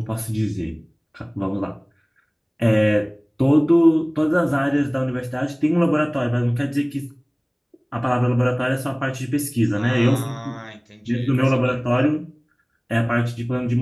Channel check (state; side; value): identical; both; correlation 1.00